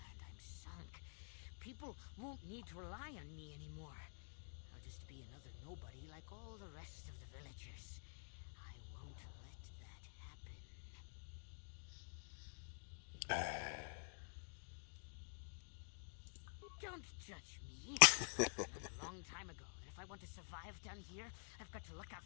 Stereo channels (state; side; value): silent; right; digital silence